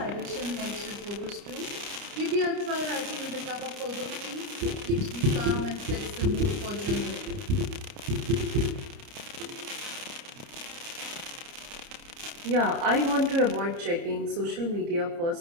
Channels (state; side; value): late; left; 29 ms